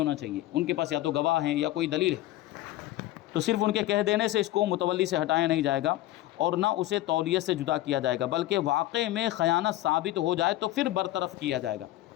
چاہیے، ان کے پاس یا تو گواہ ہیں یا کوئی دلیل ہے، تو صرف ان کے کہہ دینے سے اس کو متولی سے ہٹایا نہیں جائے گا اور نہ اسے تولیت سے جدا کیا جائے گا، بلکہ واقع میں خیانت ثابت ہو جائے تو پھر برطرف کیا جائے گا،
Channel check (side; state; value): right; quieter; 15.5 dB